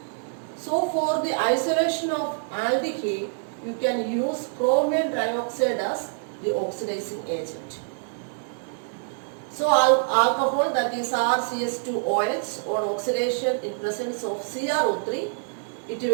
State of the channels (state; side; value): silent; left; digital silence